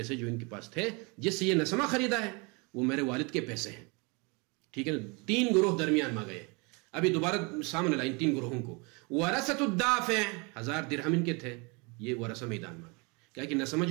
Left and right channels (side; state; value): left; quieter; 29.9 dB